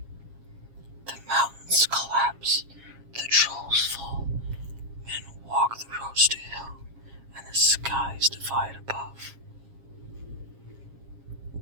The mountains collapse, the trolls fall, men walk the roads to hell, and the skies divide above.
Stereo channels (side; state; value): left; late; 7.4 ms